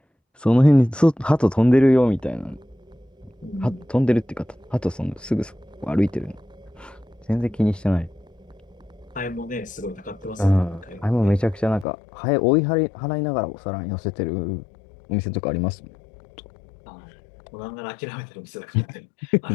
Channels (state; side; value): drops out; right; at 11.9 s